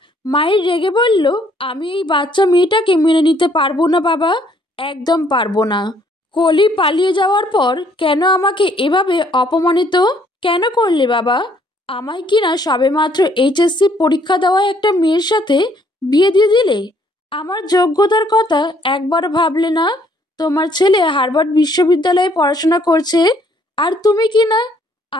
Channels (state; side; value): normal; both; correlation 0.65